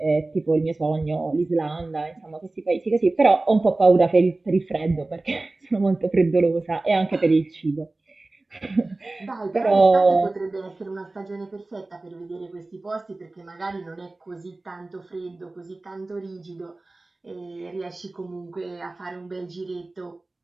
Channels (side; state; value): left; quieter; 3.1 dB